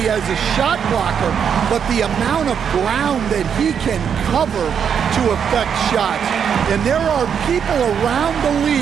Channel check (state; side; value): quieter; left; 7.6 dB